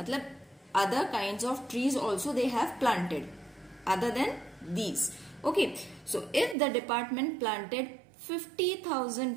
other kinds of trees also they have planted other than these. Okay, so if the department planted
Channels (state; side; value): drops out; left; at 6.6 s